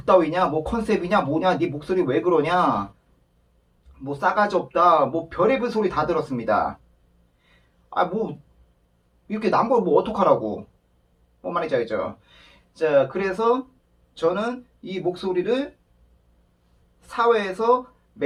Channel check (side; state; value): both; identical; correlation 1.00